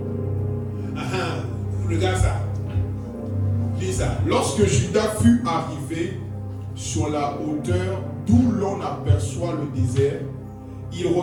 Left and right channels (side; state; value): both; identical; correlation 1.00